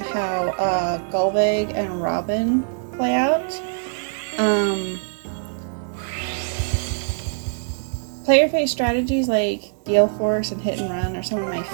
Golvig and Robin play out. Player phase strategies like Gale Force and Hit and Run are some of my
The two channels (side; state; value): left; silent; digital silence